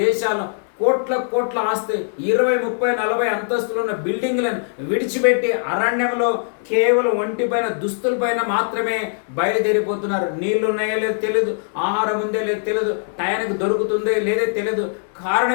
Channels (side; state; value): right; silent; digital silence